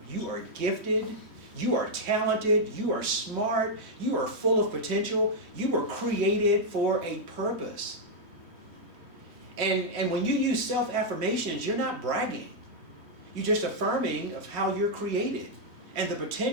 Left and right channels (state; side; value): late; left; 3.1 ms